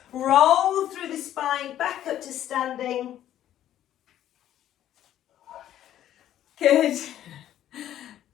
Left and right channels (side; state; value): right; quieter; 11.9 dB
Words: roll through the spine, back up to standing. Good.